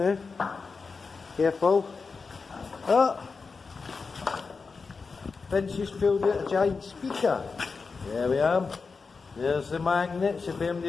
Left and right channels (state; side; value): quieter; right; 4.7 dB